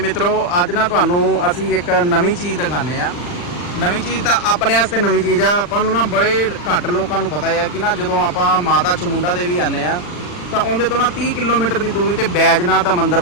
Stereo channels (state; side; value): late; right; 40 ms